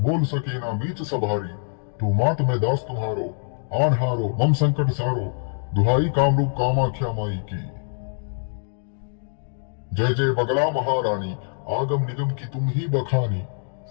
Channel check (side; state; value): right; silent; digital silence